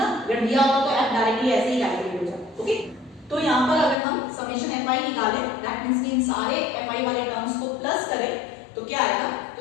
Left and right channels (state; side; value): drops out; right; at 4.0 s